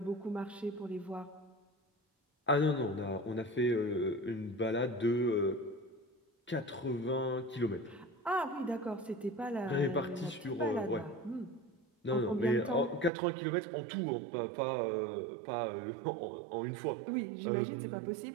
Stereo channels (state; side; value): drops out; left; at 13.1 s